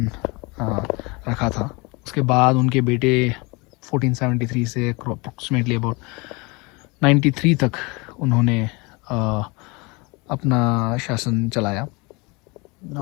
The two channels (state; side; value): quieter; right; 27.1 dB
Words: रखा था। उसके बाद उनके बेटे 1473 से अप्रॉक्सीमेटली अबाउट 93 तक उन्होंने अपना शासन चलाया।